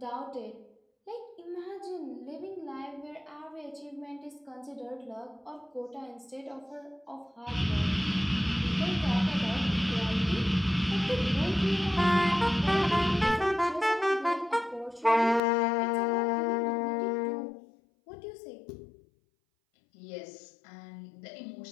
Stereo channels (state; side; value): drops out; right; at 15.4 s